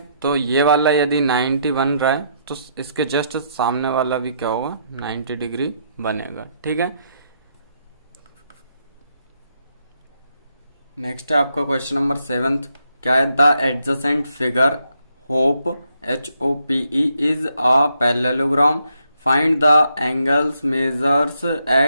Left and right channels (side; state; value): both; inverted; correlation -0.75